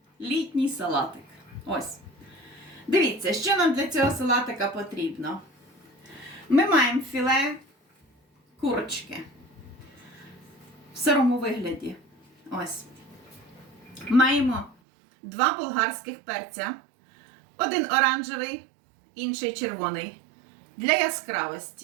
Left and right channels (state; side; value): drops out; left; at 14.8 s